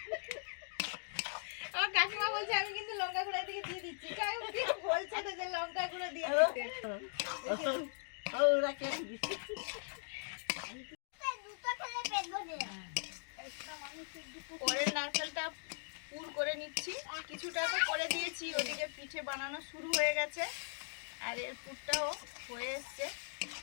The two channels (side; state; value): right; silent; digital silence